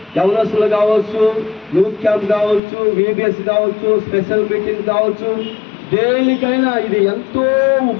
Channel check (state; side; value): drops out; right; at 2.6 s